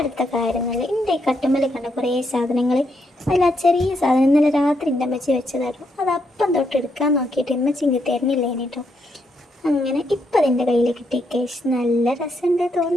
കാര്യങ്ങൾ, എൻ്റെ ഈ കട്ടുമ്മൽ കണ്ട കുറേ സാധനങ്ങൾ, അതിൽ ആ ചെറിയ സാധനം ഇന്നലെ രാത്രി എൻ്റെ അമ്മച്ചി വെച്ചതായിരുന്നു. അത് അപ്പം തൊട്ട് എടുക്കാൻ നോക്കിയിട്ട് അമ്മച്ചി ഇങ്ങ് തരുന്നില്ല കേട്ടോ. അങ്ങനെ ഇപ്പം അതിൻ്റെ കയ്യിൽ കിട്ടി കേസ്. നല്ല രസമുണ്ട്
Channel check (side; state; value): both; normal; correlation 0.78